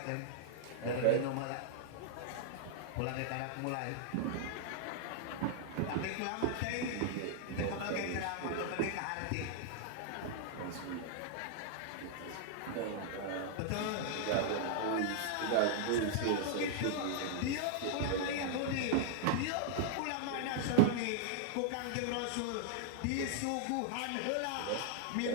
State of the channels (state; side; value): different; both; correlation -0.01